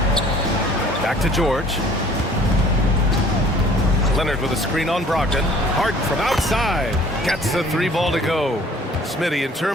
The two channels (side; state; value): both; normal; correlation 0.54